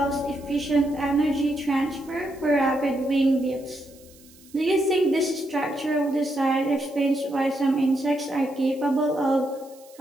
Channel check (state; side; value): noise; right; hiss, 25 dB below the sound